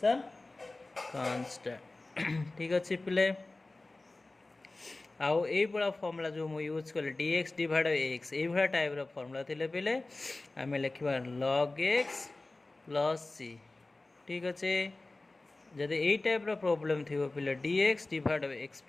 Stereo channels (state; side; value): quieter; right; 3.1 dB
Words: constant ठीक अच्छे पहले आउ ये बड़ा फॉर्मूला जो मु यूज कले dx डिवाइड x ये भाड़ा टाइप रो फॉर्मूला थे पहले आम लिखा log x प्लस c ठीक अच्छे जदि यही टाइप रो प्रॉब्लम थी पहले dx डिवाइड x